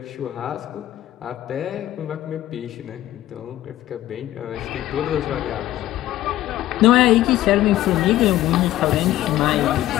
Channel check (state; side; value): quieter; right; 14.3 dB